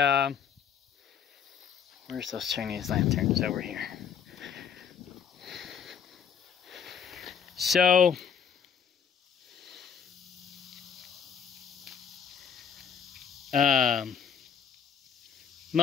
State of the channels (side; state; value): right; quieter; 7.5 dB